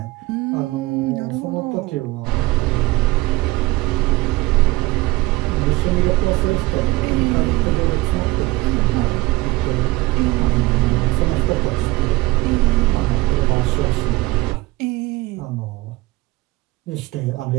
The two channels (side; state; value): left; quieter; 20.6 dB